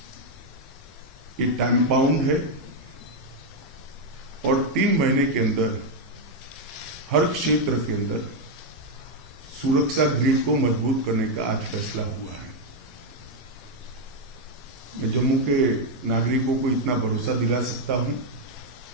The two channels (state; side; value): normal; both; correlation 0.02